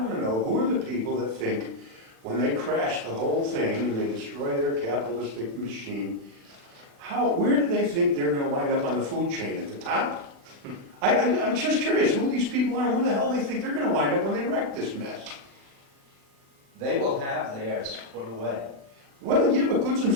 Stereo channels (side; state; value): left; late; 36 ms